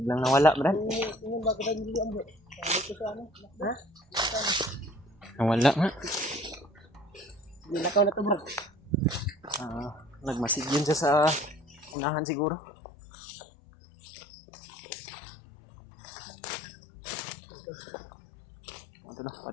nawala, Brad. Nawala nga. Nilakaw na to, bro. Nagmasid yun siya sa unahan siguro. Mga tol,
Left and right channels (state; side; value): drops out; right; at 12.0 s